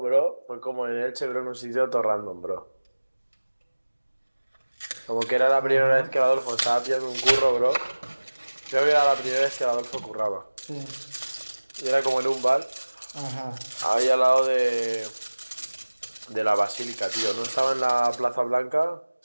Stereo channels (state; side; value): inverted; both; correlation -1.00